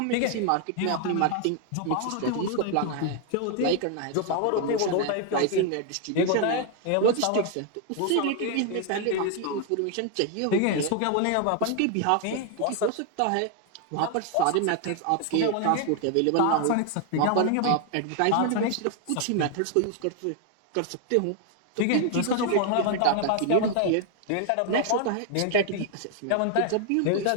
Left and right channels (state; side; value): different; both; correlation 0.00